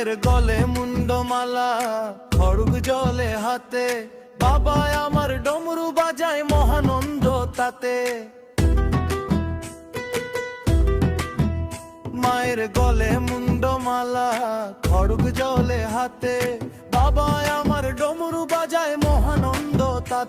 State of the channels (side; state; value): both; identical; correlation 1.00